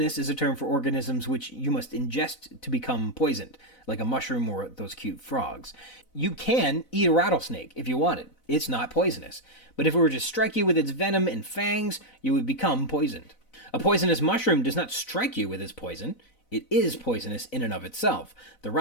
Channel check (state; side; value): late; right; 4.0 ms